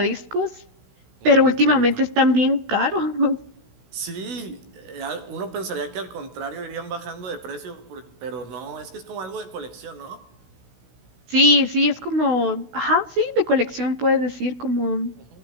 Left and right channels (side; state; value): left; late; 16 ms